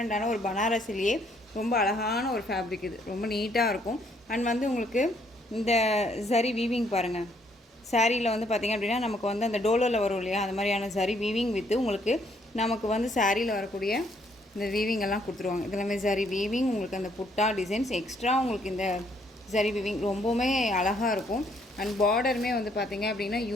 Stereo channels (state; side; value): normal; both; correlation 0.68